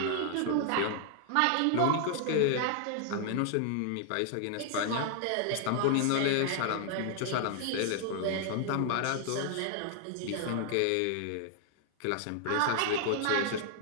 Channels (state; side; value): different; both; correlation 0.00